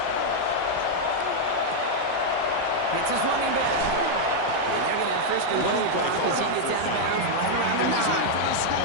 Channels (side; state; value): both; different; correlation -0.01